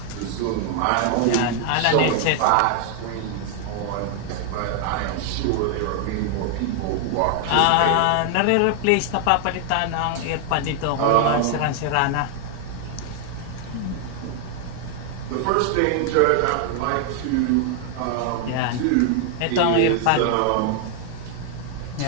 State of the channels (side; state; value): both; different; correlation 0.00